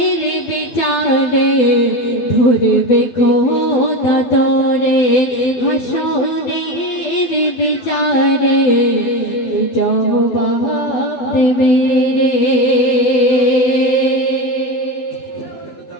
বিচারে ধরবে খোদা তোরে হাসরের বিচারে জবাব দেবে রে।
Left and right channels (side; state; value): right; late; 12 ms